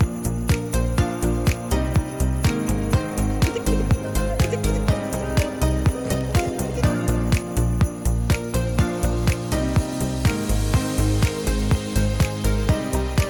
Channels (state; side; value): identical; both; correlation 1.00